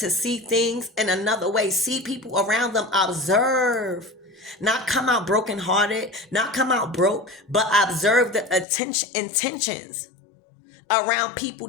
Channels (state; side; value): drops out; right; at 8.7 s